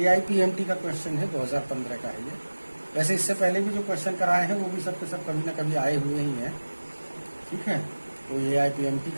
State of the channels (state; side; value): inverted; both; correlation -1.00